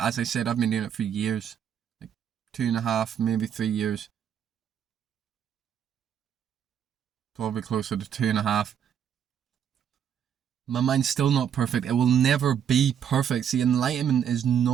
I said, I've been doing it for years. Like 2.5, maybe 3 years. Probably closer to 2.5. My mind's still not perfect. It will never be perfect. See, enlightenment is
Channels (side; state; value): left; quieter; 8.7 dB